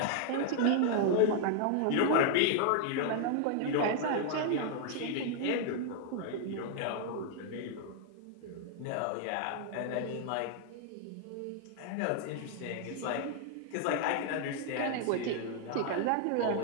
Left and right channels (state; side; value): different; both; correlation 0.00